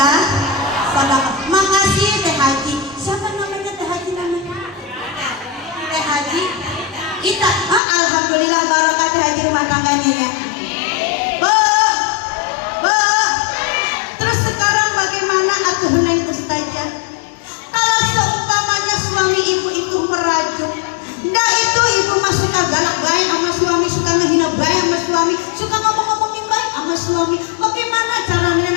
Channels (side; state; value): right; drops out; at 7.8 s